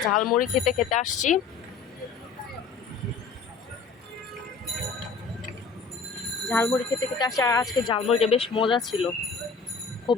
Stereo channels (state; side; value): quieter; right; 5.1 dB